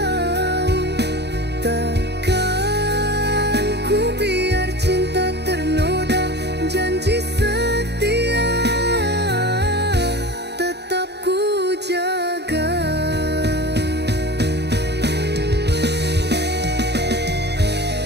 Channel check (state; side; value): late; left; 0.49 ms